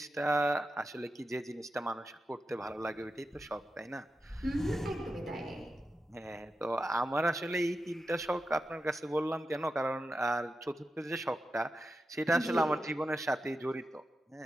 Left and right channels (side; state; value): both; normal; correlation 0.90